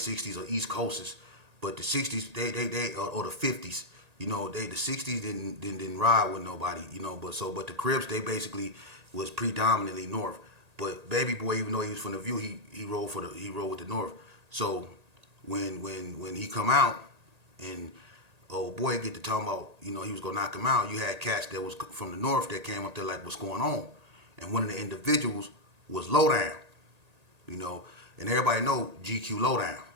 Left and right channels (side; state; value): left; late; 1.8 ms